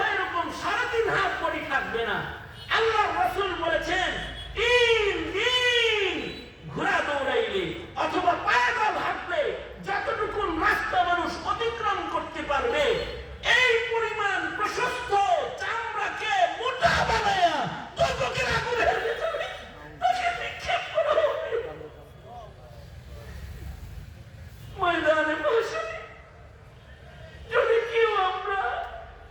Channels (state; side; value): identical; both; correlation 1.00